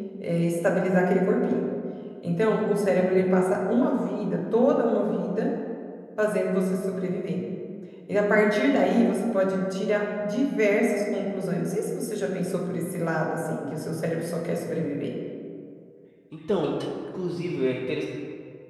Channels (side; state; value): both; identical; correlation 1.00